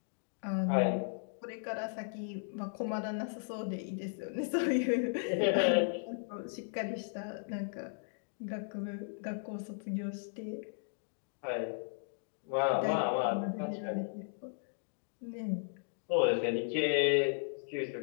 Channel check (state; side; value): silent; right; digital silence